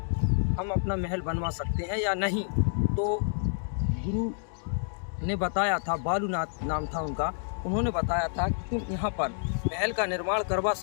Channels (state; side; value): silent; right; digital silence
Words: हम अपना महल बनवा सकते हैं या नहीं। तो गुरु ने बताया था, बालूनाथ नाम था उनका, उन्होंने बताया था कि तुम यहाँ पर महल का निर्माण करवा